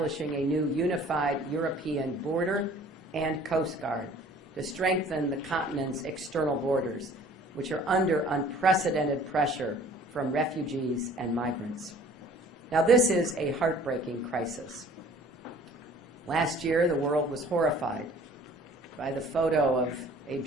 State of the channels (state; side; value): normal; both; correlation 0.51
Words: a new unified European border and Coast Guard to strengthen the continent's external borders, which are under unprecedented pressure from refugees and migrants. Now, this is a heartbreaking crisis. Last year, the world was horrified by the photo of a